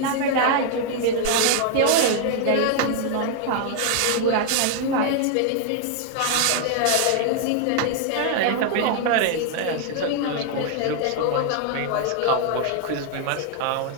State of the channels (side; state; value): both; different; correlation 0.00